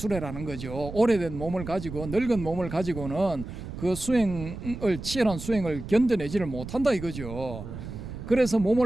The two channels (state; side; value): noise; right; rumble, 10 dB below the sound